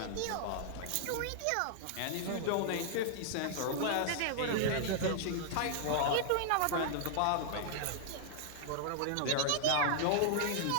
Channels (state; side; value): different; both; correlation -0.01